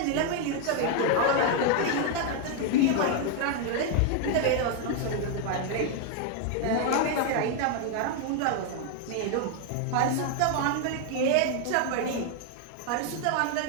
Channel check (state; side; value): different; both; correlation 0.00